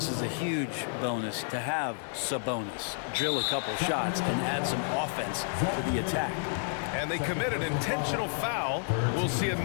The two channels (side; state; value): right; silent; 58 dB below the other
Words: is a huge bonus to have Sabonis drill a couple shots and add some offense to the attack. And they commit an intentional foul. We'll see